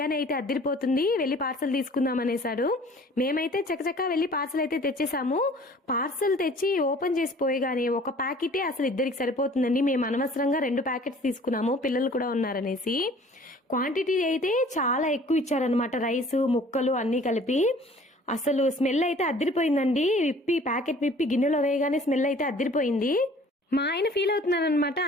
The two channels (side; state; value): both; normal; correlation 0.51